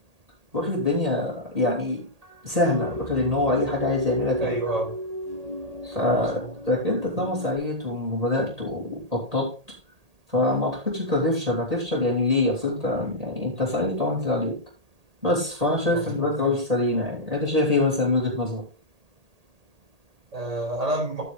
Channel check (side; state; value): left; late; 1.8 ms